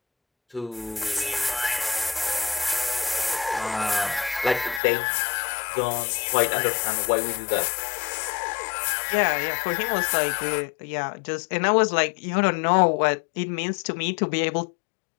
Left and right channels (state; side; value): drops out; right; at 4.8 s